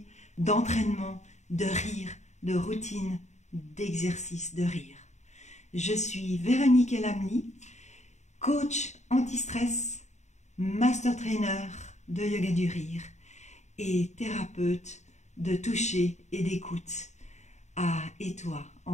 d'entraînement, de rire, de routine, d'exercice de rire. Je suis Véronique Elamli, coach anti-stress, master trainer de yoga du rire et thérapeute de toucher et d'écoute à Étoile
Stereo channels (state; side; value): late; right; 0.34 ms